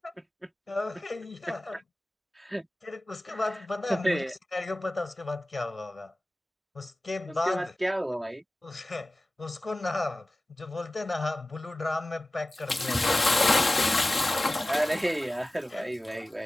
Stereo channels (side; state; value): both; normal; correlation 0.96